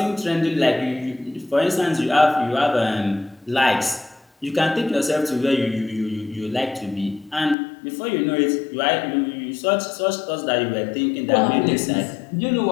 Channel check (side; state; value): right; drops out; at 7.6 s